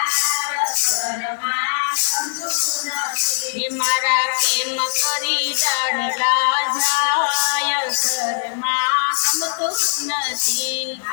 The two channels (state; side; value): silent; right; digital silence